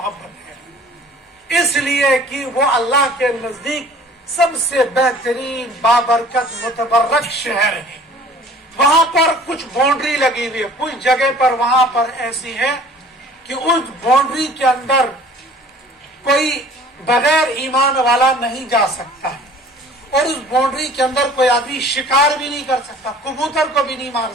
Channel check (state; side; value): normal; both; correlation 0.49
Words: है, इसलिए कि वो अल्लाह के नजदीक सबसे बेहतरीन बाबरकत मुतबर्रक शहर है। वहां पर कुछ बाउंड्री लगी हुई है, कुछ जगह पर वहां पर ऐसी है कि उस बाउंड्री के अंदर कोई बगैर ईमान वाला नहीं जा सकता, और उस बाउंड्री के अंदर कोई आदमी शिकार भी नहीं कर सकता, कबूतर को भी नहीं मार